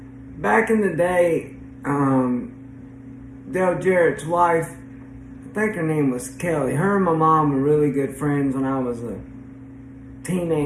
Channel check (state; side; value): identical; both; correlation 1.00